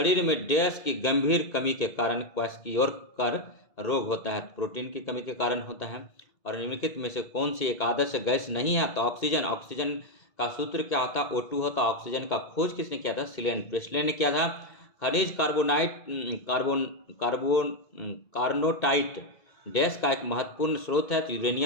में डैश की गंभीर कमी के कारण क्वाशकियोकर रोग होता है? प्रोटीन की कमी के कारण होता है। और निम्नलिखित में से कौन सी एक आदर्श गैस नहीं है? तो ऑक्सीजन। ऑक्सीजन का सूत्र क्या होता है? O2 होता। ऑक्सीजन का खोज किसने किया था? प्रेसले ने किया था। खनिज कार्नोटाइट डैश का एक महत्वपूर्ण स्रोत है, तो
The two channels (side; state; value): right; late; 2.1 ms